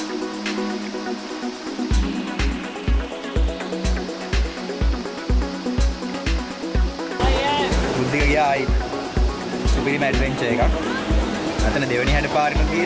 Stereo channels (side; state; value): both; identical; correlation 1.00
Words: ගියායි සුපිරිම ඇඩ්වෙන්චර් එකක්. අතන දෙවෙනි හැඩ පාරෙම